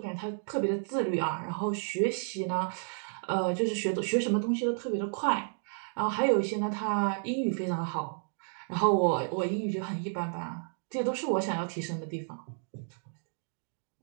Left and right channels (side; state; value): left; silent; 57 dB below the other